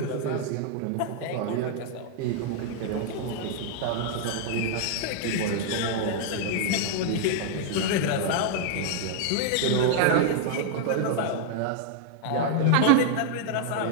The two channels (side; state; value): both; different; correlation 0.00